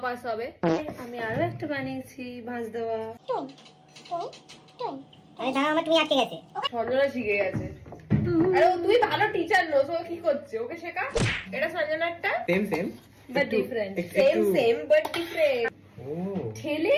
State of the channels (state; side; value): identical; both; correlation 1.00